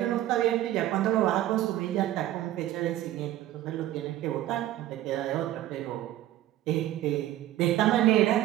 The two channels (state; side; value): quieter; left; 13.8 dB